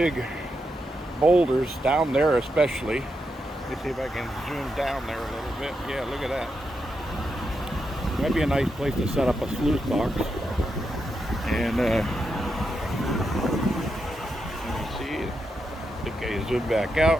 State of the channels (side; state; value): both; normal; correlation 0.84